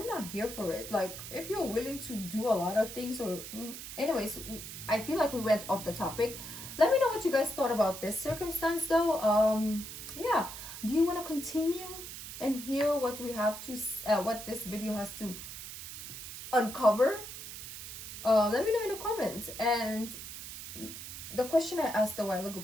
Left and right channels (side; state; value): right; noise; hiss, 10 dB below the sound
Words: not here for it. Like, if you're willing to do a lot of things, or anyways, I feel like we went off the topic. Let me know what you guys thought about this circumstance, though. Yeah, do you want to continue and hear what we have to what this video has to uncover? Let me know in the comments. And the question I asked a while ago,